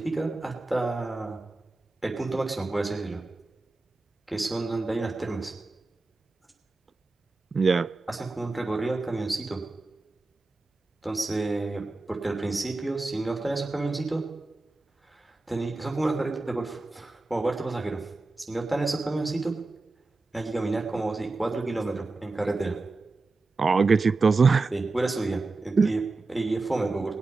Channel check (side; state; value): left; quieter; 3.4 dB